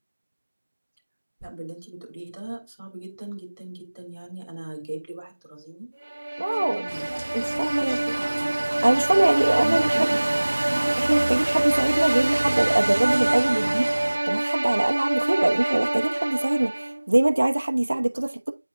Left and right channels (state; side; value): inverted; both; correlation -1.00